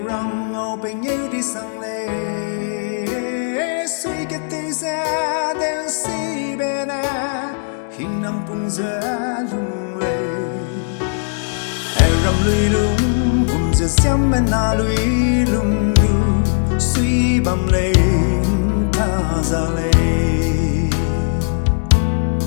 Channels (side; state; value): right; silent; digital silence